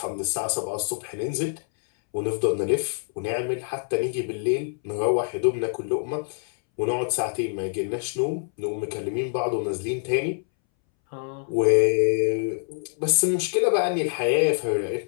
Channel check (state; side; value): silent; right; 61 dB below the other